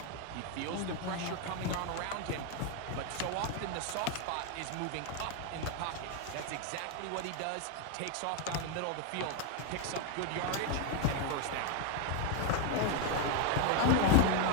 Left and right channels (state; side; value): different; both; correlation 0.01